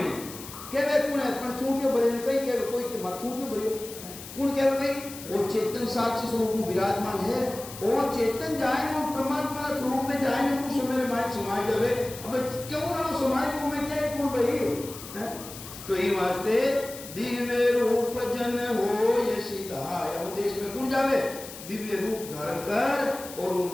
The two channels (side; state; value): left; noise; hiss, 13 dB below the sound